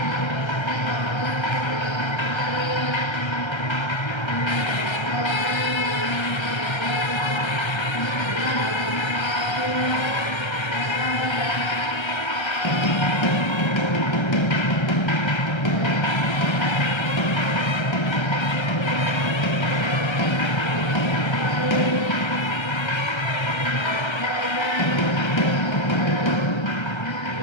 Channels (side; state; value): right; late; 1.3 ms